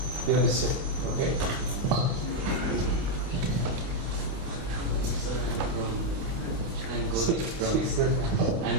You understand? Okay.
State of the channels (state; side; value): late; left; 28 ms